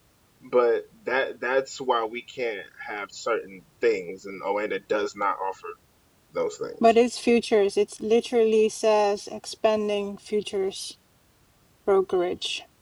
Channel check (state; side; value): identical; both; correlation 1.00